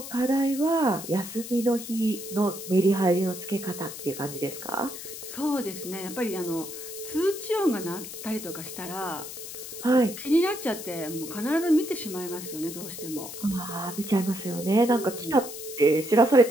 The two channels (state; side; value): noise; left; hiss, 10 dB below the sound